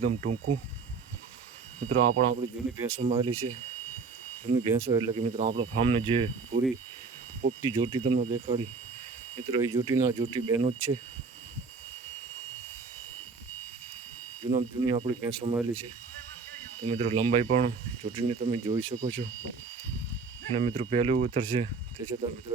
ટૂંકું. મિત્રો આ પણ આપણી જૂની ભેંસોમાં આવેલી છે. જૂની ભેંસો એટલે કે મિત્રો આપણા ફાર્મને જે પૂરી પોપટી જોટી તમને દેખાડી, મિત્રો એ જોટી બહેનો જ છે. જૂની આપણી ભેંસોમાં આવેલી છે. તો મિત્રો લંબાઈ પણ જોટીની તમે જોઈ શકો છો. અને મિત્રો પહેલું ઉતરશે તે છતાં મિત્રો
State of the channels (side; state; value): left; quieter; 4.7 dB